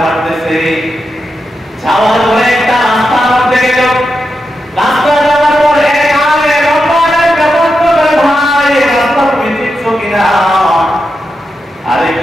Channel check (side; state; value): both; normal; correlation 0.87